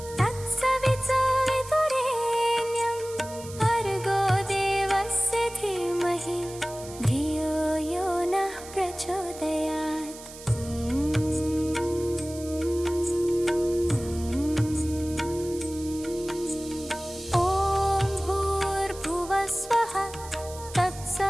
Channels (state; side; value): noise; right; hiss, 16 dB below the sound